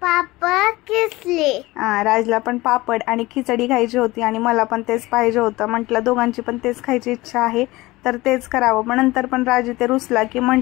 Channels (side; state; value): right; quieter; 20.0 dB